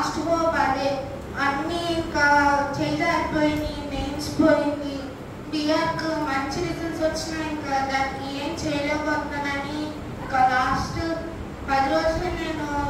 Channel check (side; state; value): both; identical; correlation 1.00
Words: హోప్ అదే. అన్నీ ఇంకా చేయలేకపోయింది, మెయిన్స్ పోయింది, బిఆర్కు మంచి రిజల్ట్స్ వచ్చినా ఇంకా దానికి ఏం చేయలేకపోతున్నానని ఇంకా లాస్ట్ 10 రోజులు నేను